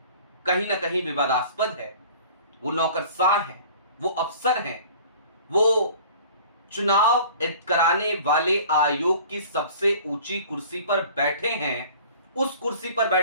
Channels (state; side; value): inverted; both; correlation -0.46